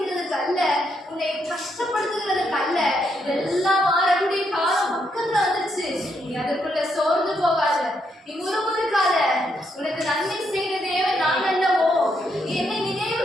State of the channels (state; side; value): normal; both; correlation 0.77